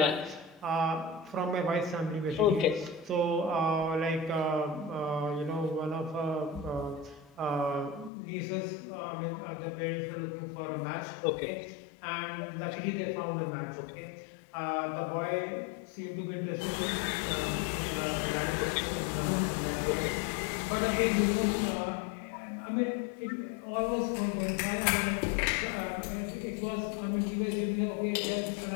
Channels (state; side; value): drops out; right; at 8.1 s